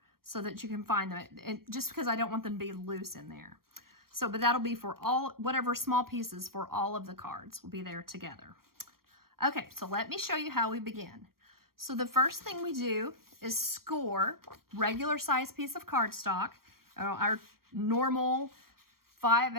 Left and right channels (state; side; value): late; left; 0.93 ms